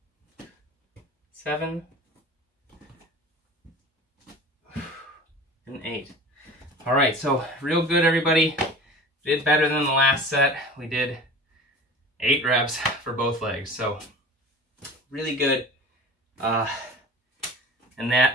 7, and 8. All right, so real good, everybody. Did better than the last set. We did 8 reps for both legs, so really good. And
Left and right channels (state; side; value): normal; both; correlation 0.38